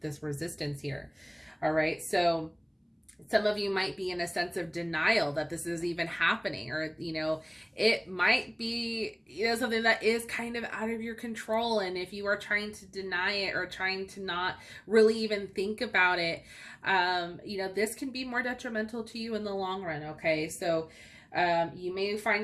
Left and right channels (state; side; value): identical; both; correlation 1.00